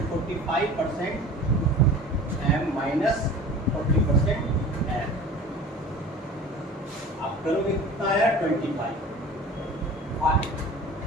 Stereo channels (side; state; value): both; normal; correlation 0.41